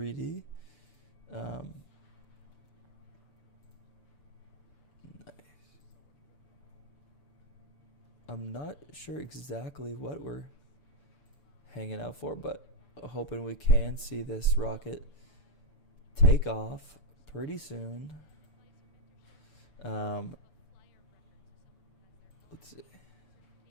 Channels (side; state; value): right; late; 6.8 ms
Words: Nice. I'm not sure exactly what we're hanging out for, but hoping we can see this rocket take off pretty soon. Let's see.